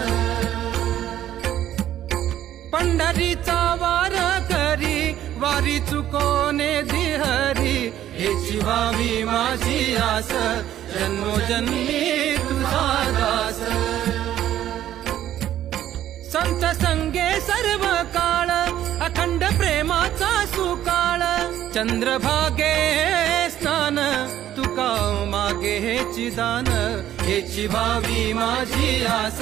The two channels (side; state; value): left; quieter; 12.0 dB